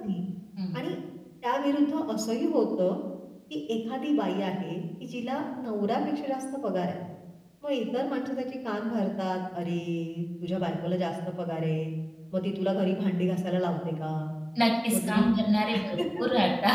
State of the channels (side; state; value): both; identical; correlation 1.00